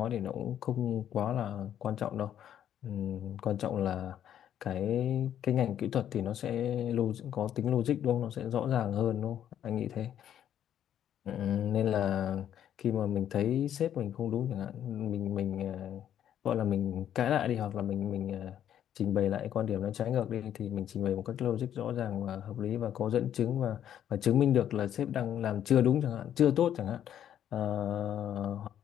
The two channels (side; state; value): right; quieter; 10.2 dB